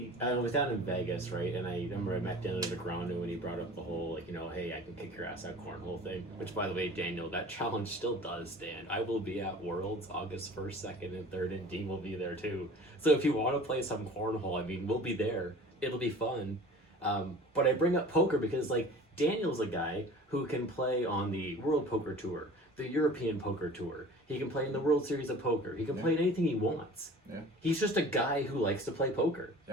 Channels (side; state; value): both; normal; correlation 0.43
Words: was down in Vegas, right, and I remember I met Daniel Negreanu when he brought up the whole, hey, I can kick your ass at cornhole thing, which, by the way, Daniel, that challenge still does stand. I will be at Worlds August 1st, 2nd, and 3rd, and Dean will be there, too. So if you want to play some cornhole, I mean, we'll be there. It'll be fun. But I bring up poker because, Daniel's a guy who can play on the World Poker Tour, the European Poker Tour. He can play in the World Series of Poker. He can play in anything he wants. Yeah. He's just a guy who likes to play poker.